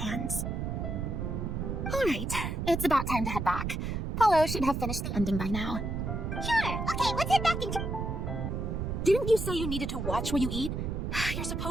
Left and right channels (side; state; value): right; noise; rumble, 2 dB below the sound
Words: Alright, it's about time to head back. Paulo should have finished the ending by now. Sure, okay, let's head back and... Didn't you say you needed to watch what you eat? You're